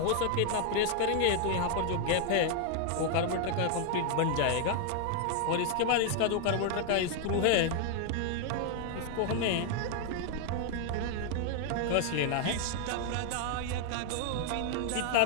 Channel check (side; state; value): both; different; correlation 0.00